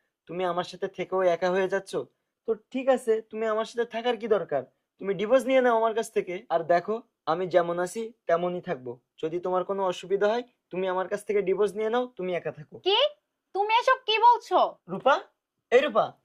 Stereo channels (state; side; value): identical; both; correlation 1.00